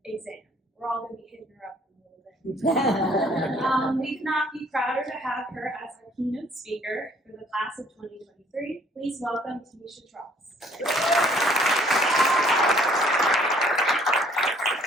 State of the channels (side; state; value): both; normal; correlation 0.59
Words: exam. We're all going to be hitting her up in a little bit. We could not be prouder to have her as our keynote speaker for the class of 2023. Please welcome Tanisha Tross.